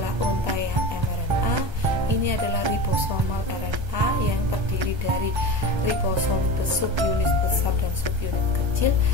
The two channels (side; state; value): left; late; 1.3 ms